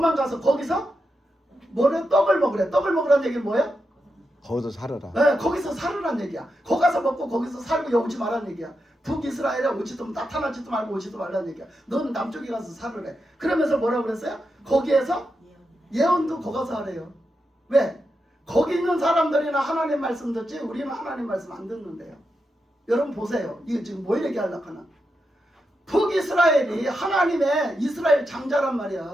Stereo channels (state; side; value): normal; both; correlation 0.87